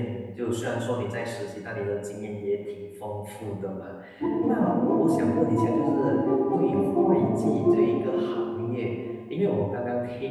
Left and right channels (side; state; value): both; identical; correlation 1.00